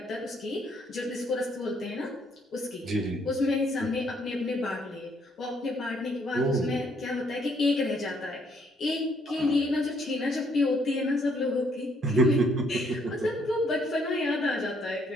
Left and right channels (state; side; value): normal; both; correlation 0.69